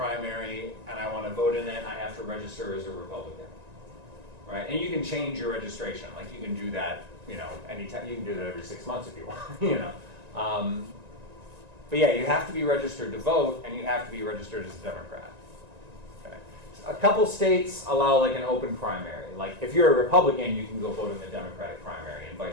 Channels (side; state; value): left; late; 1.9 ms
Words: and I want to vote in it, I have to register as a Republican. Right? And you can change your registration. Like you can do that, you know, anytime. You can do that every 6 months if you want, you know. But yeah, you have to be registered to vote, and you have to be registered as a Democrat. Okay. A couple states allow like an open primary. Like if you're a Republican, you can go vote in the Democratic primary, and